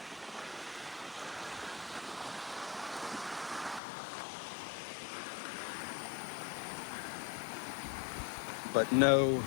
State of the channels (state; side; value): drops out; right; at 3.8 s